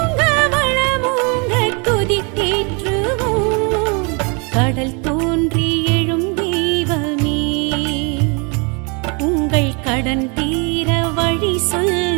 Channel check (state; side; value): quieter; left; 33.1 dB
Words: வளமோங்க துதித்தேற்றுவோம். கடல் தோன்றி எழும் தெய்வமே, உங்கள் கடன் தீர வழி